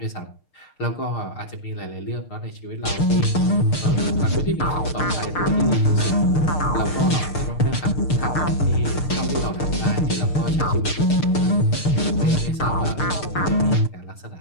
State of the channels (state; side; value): late; right; 6.6 ms